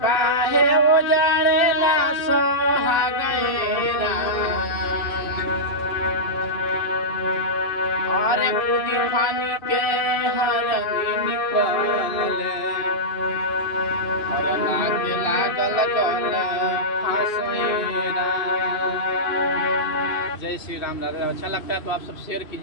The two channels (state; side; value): late; right; 2.6 ms